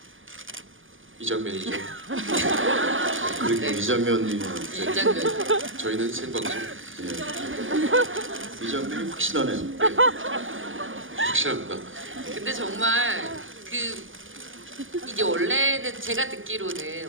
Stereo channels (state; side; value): late; left; 0.58 ms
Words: 이 장면이죠. 그렇게 이 장면이 이 장면. 저희는 생방송 이 장면이 확실하네요. 확실합니다. 근데 정말 이게 원래는 제가 듣기로는